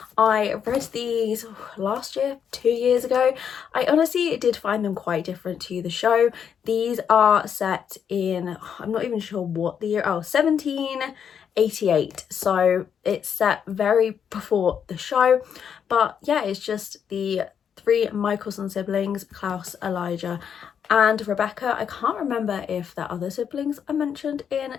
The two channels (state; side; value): quieter; right; 7.8 dB